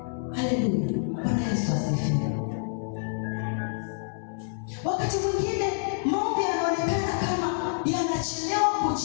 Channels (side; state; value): right; silent; digital silence